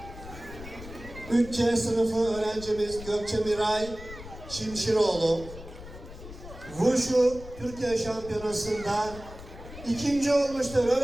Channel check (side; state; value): left; noise; rumble, 14 dB below the sound